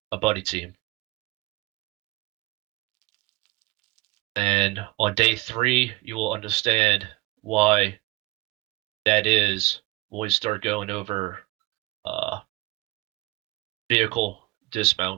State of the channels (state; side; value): quieter; left; 21.5 dB